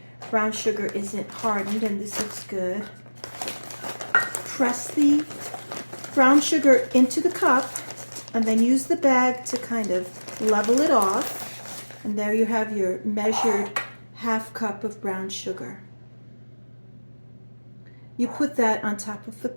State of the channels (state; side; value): inverted; both; correlation -1.00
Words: brown sugar isn't hardened, and this looks good. Press the brown sugar into the cup and then use the bag to kind of level it off. And there you have your measured half cup of brown sugar. You put that on top of